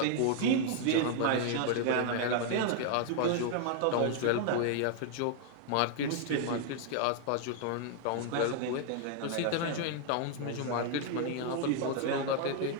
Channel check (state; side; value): different; both; correlation 0.00